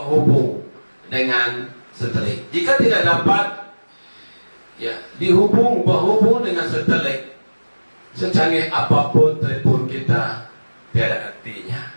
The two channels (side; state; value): both; inverted; correlation -1.00